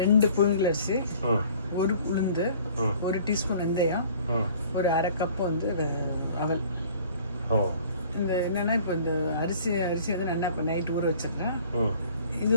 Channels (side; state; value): both; inverted; correlation -0.52